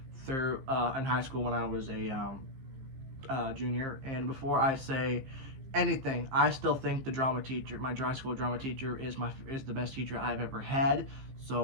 through in high school when I was a junior. And before I say anything, I still think the drama teacher, my high school drama teacher, is the best teacher I've ever had.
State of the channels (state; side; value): late; left; 15 ms